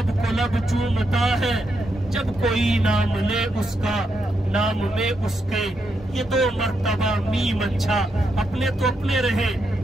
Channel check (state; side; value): normal; both; correlation 0.82